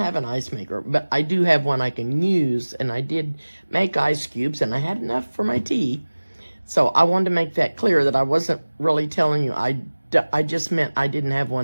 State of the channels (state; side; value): inverted; both; correlation -1.00